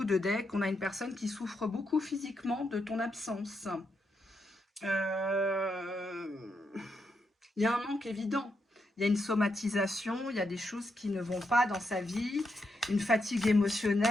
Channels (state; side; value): normal; both; correlation 0.82